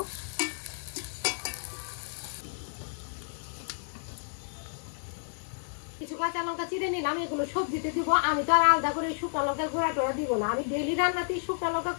কিছু কাঁচা লঙ্কা চিড়ে নিলাম, এগুলো সবজিতে দিব। আমি তো আর আলাদা করে শুকনো লঙ্কার গুঁড়া টোড়া দিব না, আমি ডেইলি রান্নাতেই শুকনো লঙ্কা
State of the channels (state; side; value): silent; right; digital silence